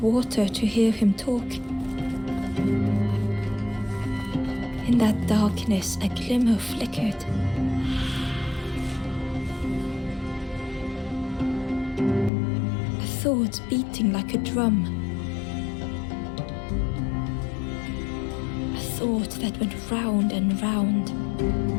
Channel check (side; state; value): right; drops out; at 12.3 s